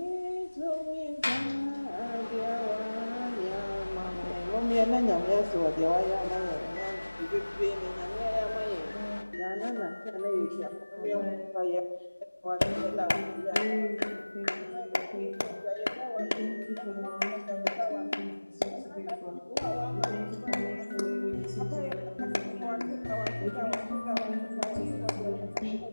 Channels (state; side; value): inverted; both; correlation -1.00